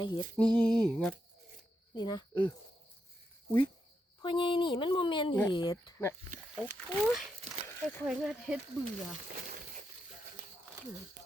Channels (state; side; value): normal; both; correlation 0.83